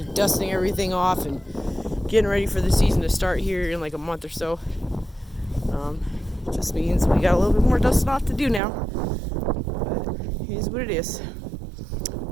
dusting everything off and getting ready for the season to start here in like a month or so. Just means we got a little bit more dusting off to do now. But it is what it is.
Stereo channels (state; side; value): drops out; left; at 8.6 s